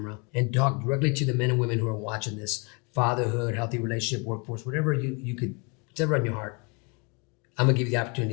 and talk directly to the men and women who are watching this, fatherhood, healthy relationship, workforce, whatever you could, whatever on your heart, I'm gonna give you the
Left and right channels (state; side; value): quieter; right; 32.2 dB